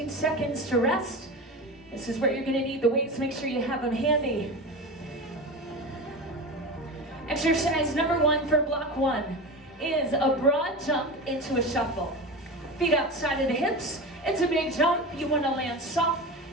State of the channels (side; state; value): both; normal; correlation 0.26